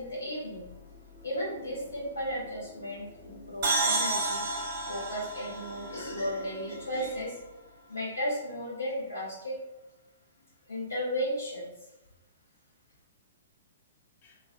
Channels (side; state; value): both; inverted; correlation -0.51